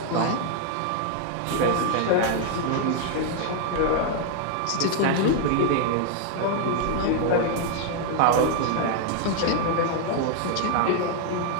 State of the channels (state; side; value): different; both; correlation 0.00